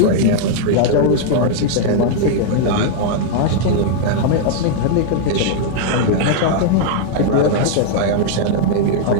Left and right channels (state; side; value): different; both; correlation 0.00